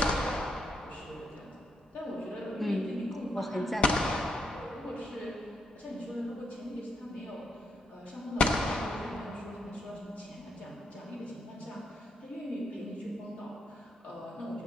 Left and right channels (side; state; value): both; normal; correlation 0.79